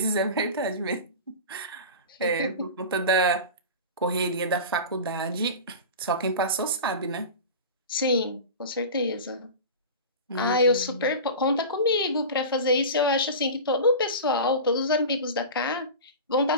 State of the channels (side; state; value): both; inverted; correlation -0.30